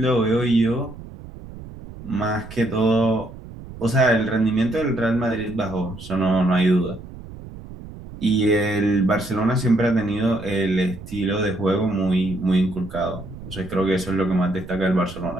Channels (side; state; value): right; noise; rumble, 15 dB below the sound